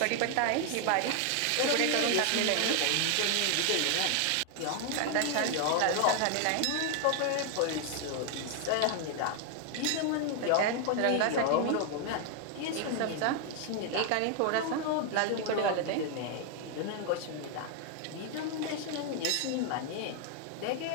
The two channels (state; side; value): different; both; correlation 0.00